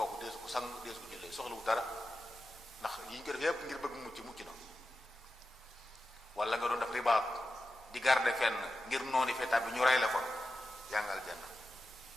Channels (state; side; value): normal; both; correlation 0.91